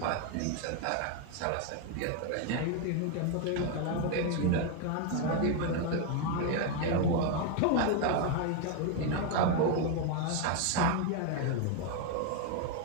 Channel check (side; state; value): both; different; correlation 0.01